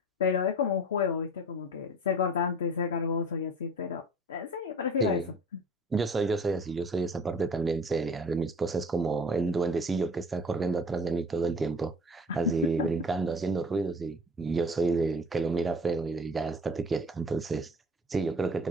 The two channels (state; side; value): normal; both; correlation 0.45